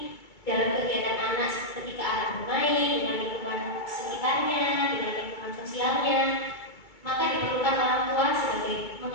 dalam kegiatan anak ketika anak bermain dengan lingkungan sekitarnya, dengan lingkungan sosialnya, maka diperlukan orang tua sebagai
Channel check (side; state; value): right; late; 2.3 ms